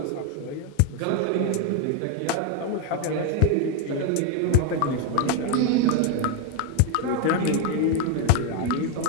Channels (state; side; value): different; both; correlation 0.01